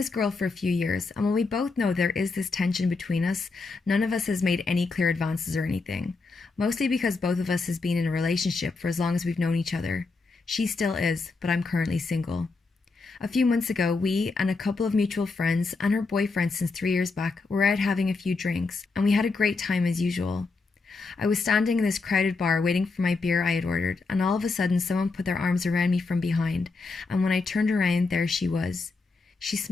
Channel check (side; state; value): right; quieter; 4.0 dB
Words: girl for a few years, and while we both know there is this tension between us, none of us has made any clear advances or anything. Mostly because both of us has been in a relationship for as long as we've known each other. She still is, but I'm currently single. A few months ago, we and a couple of mutual friends and her boyfriend since 3 years back were out having a few drinks, and we had a great time as usual. I was standing in this crowded bar waiting for my beer I had ordered, and all of a sudden someone put their arms around me from behind, and when I turned around, there she was. She